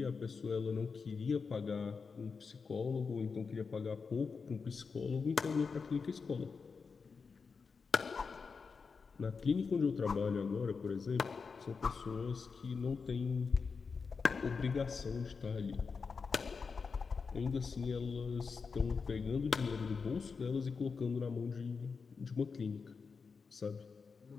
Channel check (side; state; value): right; quieter; 5.1 dB